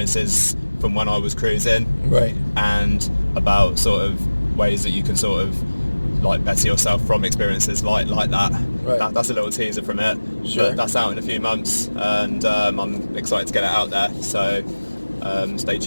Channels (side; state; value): both; inverted; correlation -1.00